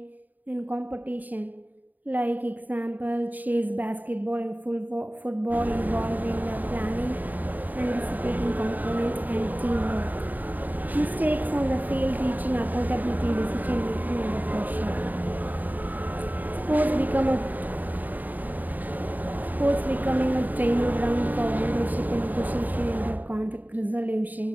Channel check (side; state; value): left; late; 0.084 ms